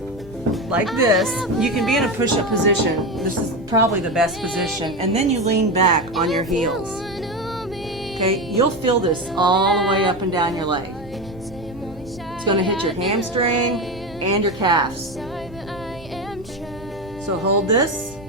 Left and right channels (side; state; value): both; normal; correlation 0.18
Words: like this. You can be in a push-up position. This is probably the best position. And then you lean back on your heels. Okay, you'll feel this all the way up and down your leg. It's going to hit your hamstring and your calves. So hold this.